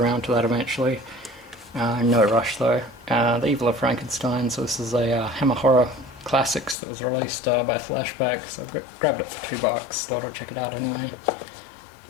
to that eventually. No rush though. The Evil of Frankenstein. So this is a Hammer Horror Classics that was released by Flashback. So I grabbed it for $2. Thought I'd check it out anyway.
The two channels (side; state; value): right; drops out; at 6.8 s